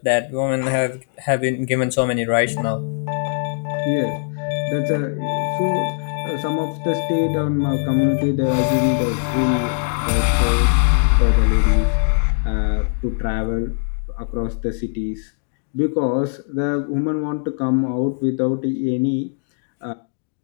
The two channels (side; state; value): right; silent; digital silence